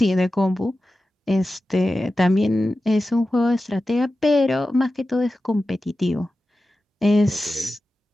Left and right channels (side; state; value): both; normal; correlation 0.93